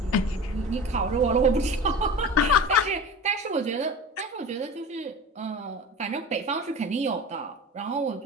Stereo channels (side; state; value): both; normal; correlation 0.34